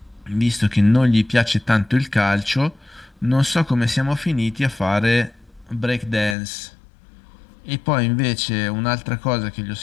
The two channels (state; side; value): drops out; right; at 6.4 s